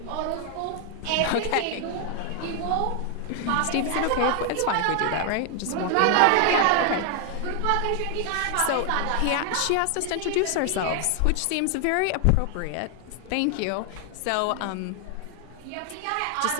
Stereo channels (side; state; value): both; different; correlation 0.00